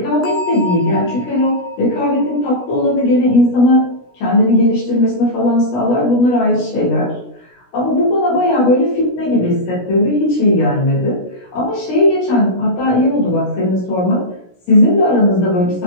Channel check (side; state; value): right; late; 16 ms